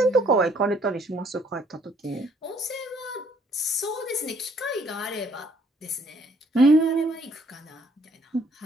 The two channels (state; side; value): normal; both; correlation 0.64